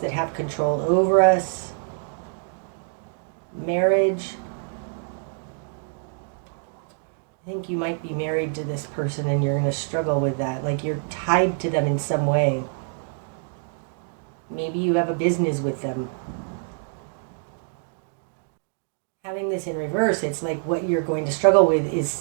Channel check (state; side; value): silent; left; digital silence